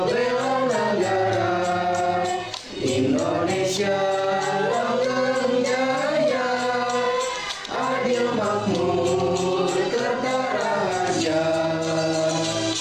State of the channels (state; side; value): identical; both; correlation 1.00